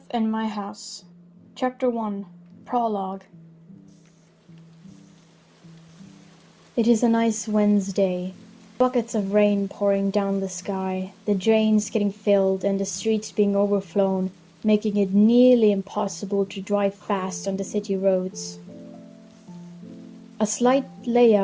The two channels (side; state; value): both; identical; correlation 1.00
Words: in My House. Chapter 1. Prologue. It is a nice Wednesday. Buckets of rain pouring down the sky, the drains getting filled and the streets being overflown, making it nearly impossible to drive fast on the city roads. A slight